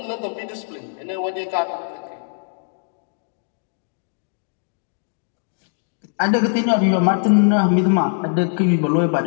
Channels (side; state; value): right; silent; digital silence